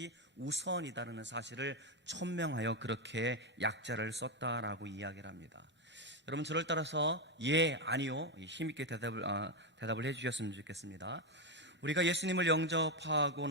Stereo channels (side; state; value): both; normal; correlation 0.07